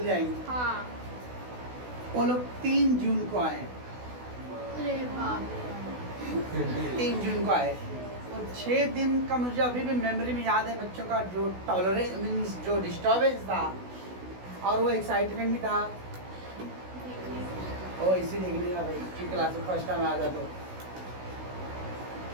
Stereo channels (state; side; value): late; left; 16 ms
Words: जाएंगे। हाँ। वो लोग 3 जून को आए, 3 जून को आए और 6 दिन का मुझे अभी भी मेमोरी में याद है, बच्चों का जो टॉलरेंस मीन्स जो डिस्टर्बेंस था और वो एक्साइटमेंट भी था। ओ इसी देखने का भाई कि क्लास में फर्स्ट टाइम आया था